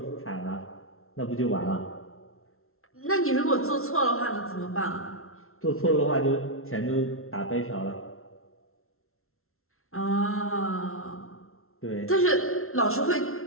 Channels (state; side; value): late; right; 0.62 ms